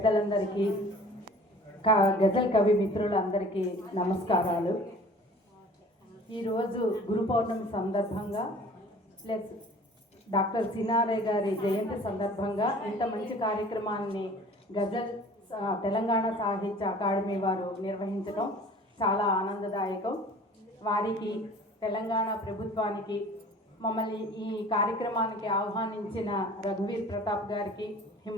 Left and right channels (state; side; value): normal; both; correlation 0.47